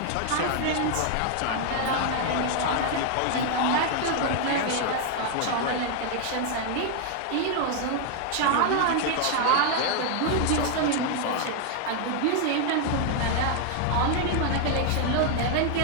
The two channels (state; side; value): different; both; correlation 0.00